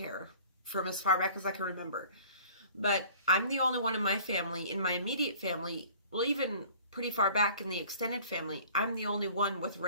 from as far back as I can remember. But I'm the only one in my family, in my immediate family, well, even pretty far back in the extended family, I'm the only one with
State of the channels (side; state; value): both; inverted; correlation -0.48